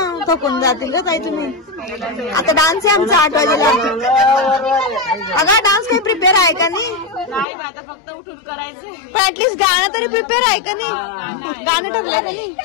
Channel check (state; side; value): drops out; right; at 7.5 s